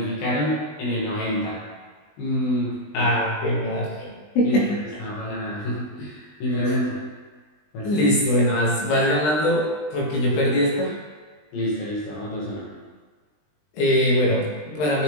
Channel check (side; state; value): right; late; 20 ms